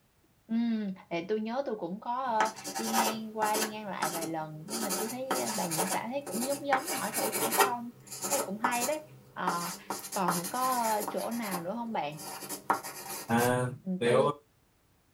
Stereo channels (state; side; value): identical; both; correlation 1.00